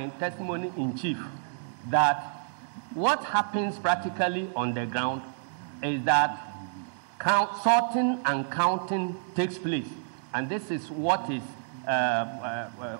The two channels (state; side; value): silent; left; digital silence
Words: testimony in chief that what happens practically on the ground is that sorting and counting takes place. And this is what is